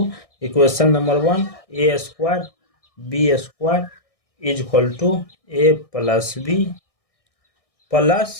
Equation number 1, a square b square is equal to a plus b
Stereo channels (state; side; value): late; right; 1.6 ms